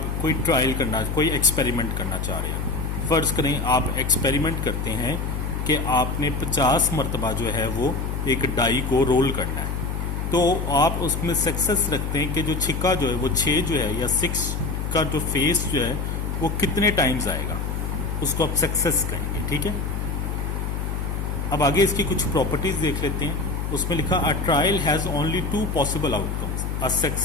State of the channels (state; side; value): noise; left; hum, 2 dB below the sound